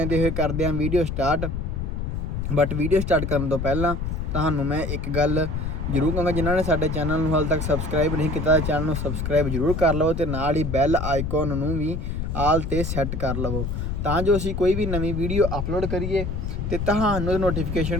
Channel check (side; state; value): left; noise; rumble, 3 dB below the sound